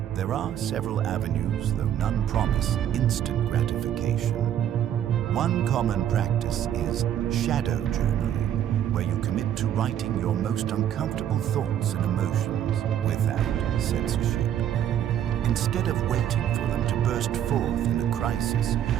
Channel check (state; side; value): quieter; left; 10.4 dB